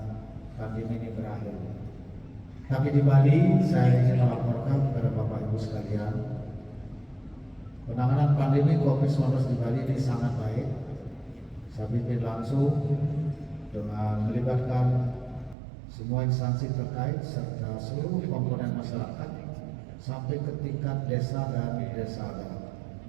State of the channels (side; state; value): left; drops out; at 15.6 s